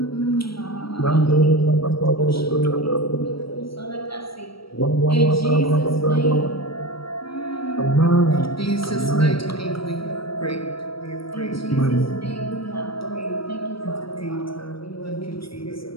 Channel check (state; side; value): late; right; 0.75 ms